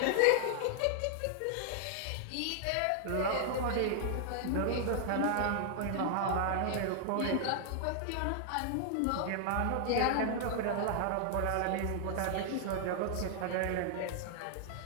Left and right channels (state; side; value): different; both; correlation 0.00